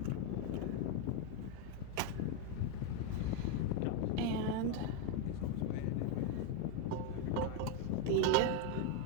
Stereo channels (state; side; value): different; both; correlation 0.02